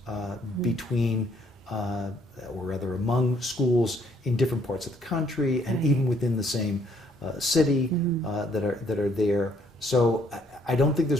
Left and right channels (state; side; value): normal; both; correlation 0.66